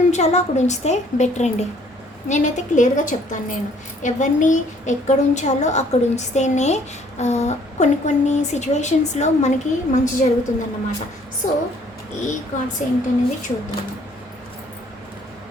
ఉంచాలో అక్కడ ఉంచితే బెటర్ అండి. నేనైతే క్లియర్గా చెప్తాను. నేను ఎవరిని ఎక్కడ ఉంచాలో అక్కడ ఉంచితేనే కొన్ని సిచ్యువేషన్స్లో మనకి మంచి జరుగుతుందన్నమాట. సో ఈ కార్డ్స్ ఏంటనేది చూద్దాము.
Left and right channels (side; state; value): both; normal; correlation 0.60